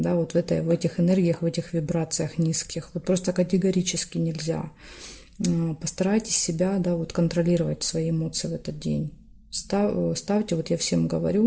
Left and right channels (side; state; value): both; identical; correlation 1.00